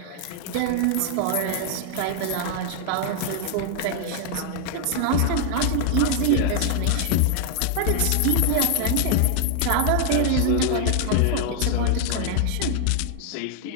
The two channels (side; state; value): both; different; correlation 0.00